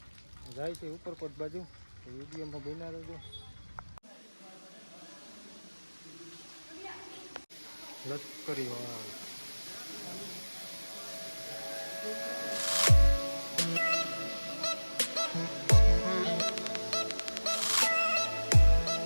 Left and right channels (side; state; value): both; inverted; correlation -1.00